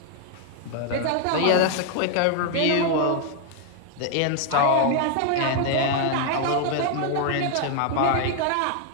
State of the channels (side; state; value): both; different; correlation 0.00